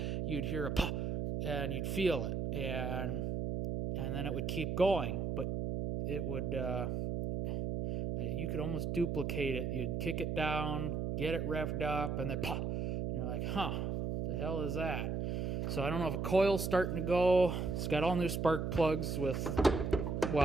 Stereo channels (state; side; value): noise; right; hum, 1 dB below the sound